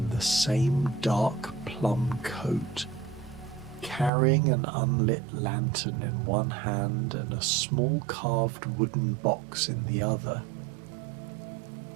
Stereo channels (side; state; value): left; drops out; at 4.1 s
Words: the same dark plum coat, carrying an unlit lantern in one hand and a small carved wooden box in the other.